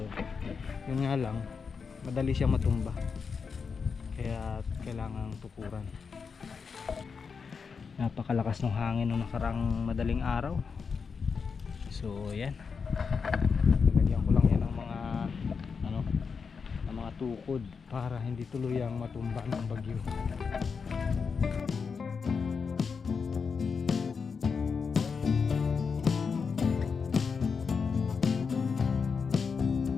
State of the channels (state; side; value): quieter; right; 5.5 dB